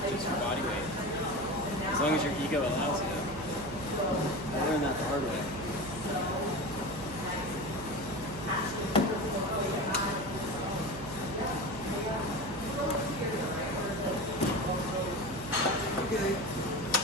just your body weight, as long as your ego allows you. I learned that the hard way. Okay.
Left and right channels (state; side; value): noise; right; hum, 12 dB below the sound